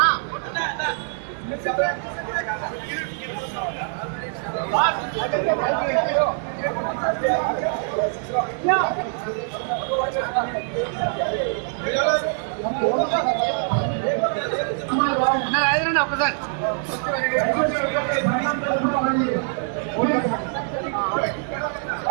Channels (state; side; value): silent; left; 63 dB below the other